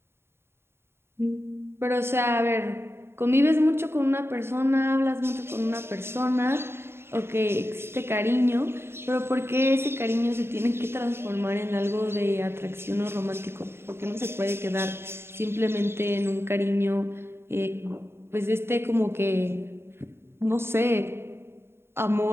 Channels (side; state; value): left; late; 0.12 ms